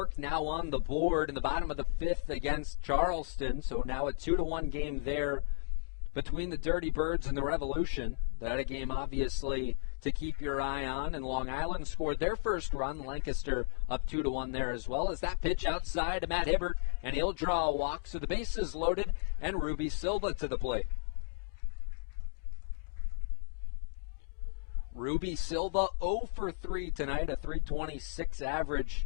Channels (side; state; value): right; silent; digital silence